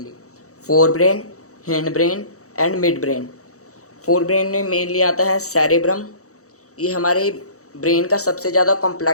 fore brain, hind brain and mid brain. Fore brain में मेनली आता है सेरेब्रम, ये हमारे ब्रेन का सबसे ज़्यादा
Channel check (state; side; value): late; right; 0.65 ms